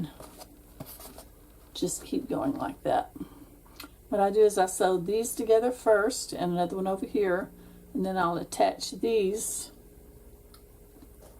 just keep going like that. What I do is I sew these together first, and another one over here, and then I'll attach these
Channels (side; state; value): both; identical; correlation 1.00